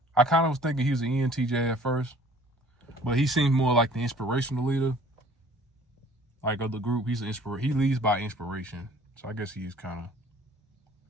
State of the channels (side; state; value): both; normal; correlation 0.53